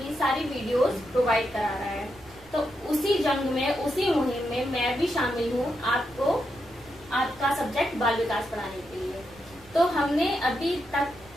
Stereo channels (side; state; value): right; noise; rumble, 24 dB below the sound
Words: सारी वीडियोस प्रोवाइड करा रहा है। तो उसी जंग में, उसी मुहिम में मैं भी शामिल हूँ आपको आपका सब्जेक्ट बाल विकास पढ़ाने के लिए। तो हमने अभी तक